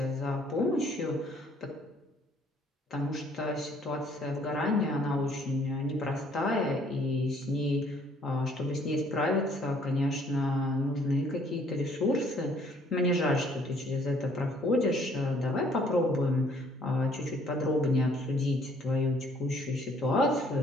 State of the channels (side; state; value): both; normal; correlation 0.62